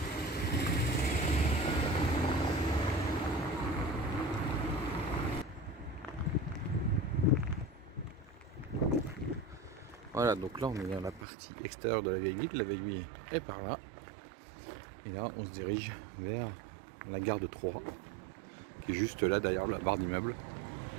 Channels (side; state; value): left; drops out; at 11.2 s